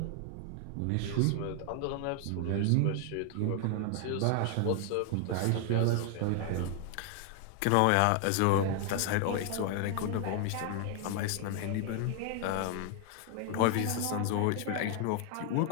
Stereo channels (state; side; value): different; both; correlation 0.00